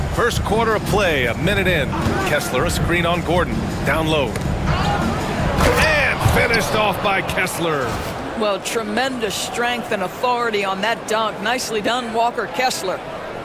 First quarter of play, a minute in. Kessler, a screen on Gordon. Down low. And finished off by Kessler. Well, tremendous strength and authority on that dunk. Nicely done, Walker Kessler.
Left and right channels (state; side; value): identical; both; correlation 1.00